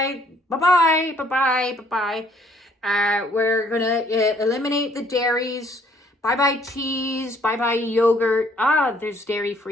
bye-bye, bye-bye, bye-bye. We're going to eliminate the dairies. Bye-bye cheese, bye-bye yogurt. There's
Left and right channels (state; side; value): normal; both; correlation 0.63